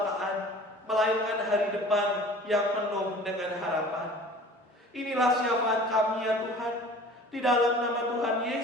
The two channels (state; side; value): normal; both; correlation 0.45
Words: melainkan hari depan yang penuh dengan harapan. Inilah syafaat kami ya Tuhan, di dalam nama Tuhan